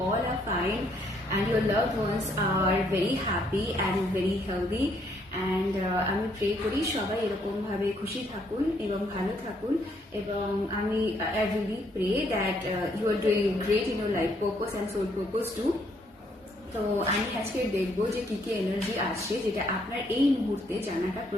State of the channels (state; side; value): normal; both; correlation 0.70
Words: are fine and your loved ones are very happy and very healthy. And আমি প্রে করি সবাই এরকম ভাবে খুশি থাকুন এবং ভালো থাকুন এবং আমি I really pray that you are doing great in your life purpose and soul purpose too. তো আমি আজকে দেখবো যে কি কি এনার্জি আসছে যেটা আপনার এই মুহূর্তে জানাটা